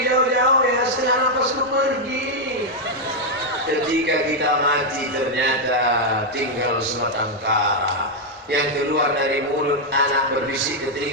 jauh-jauh ya, setengah napasku pergi. Ketika kita mati ternyata tinggal sebatang kara. Yang keluar dari mulut anak berbisik ke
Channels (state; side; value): normal; both; correlation 0.00